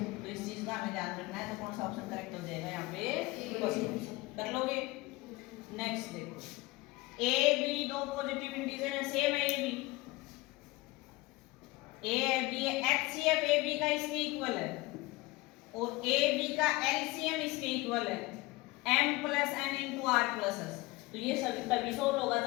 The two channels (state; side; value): quieter; right; 21.2 dB